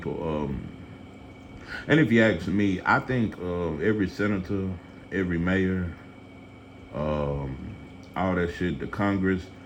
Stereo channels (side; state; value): both; identical; correlation 1.00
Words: And if you ask me, I think every senator, every mayor, all that shit, the Congress,